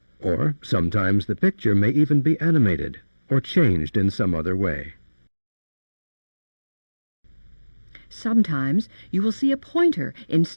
or sometimes the picture may even be animated or changed in some other way. Sometimes you will see a pointer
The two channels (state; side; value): inverted; both; correlation -1.00